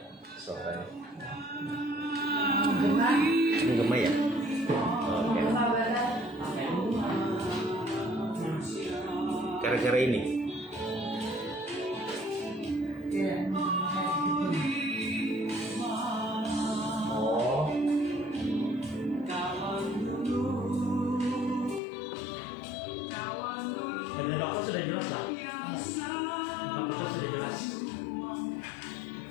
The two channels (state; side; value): drops out; right; at 21.8 s